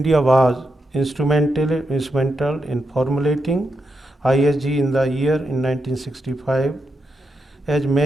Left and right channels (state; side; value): normal; both; correlation 0.84